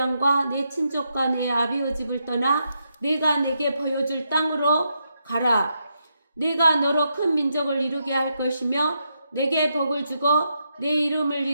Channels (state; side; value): inverted; both; correlation -0.82